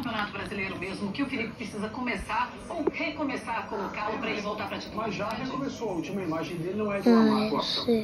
Brasileiro mesmo que o Felipe precisa começar ou recomeçar a colocá-lo para ele voltar para a titularidade? Mas já recomeçou, a última imagem dele não é de uma má atuação,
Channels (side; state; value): both; identical; correlation 1.00